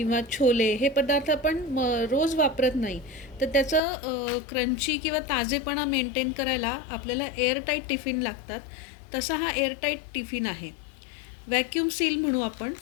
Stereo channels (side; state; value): right; drops out; at 3.8 s